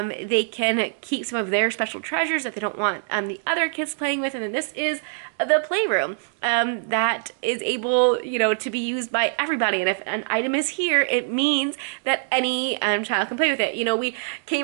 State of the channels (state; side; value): silent; left; digital silence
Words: can keep some of their special treasures that they don't want the other kids playing with. And then this is the playroom that is able, to be used by everybody. And if an item is here, it means that any child can play with it. We